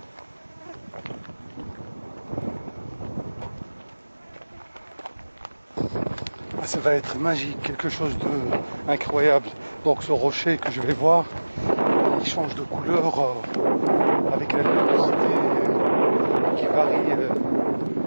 Ça va être magique, quelque chose d'incroyable. Donc ce rocher que je vais voir, il change de couleur avec la luminosité qui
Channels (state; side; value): inverted; both; correlation -1.00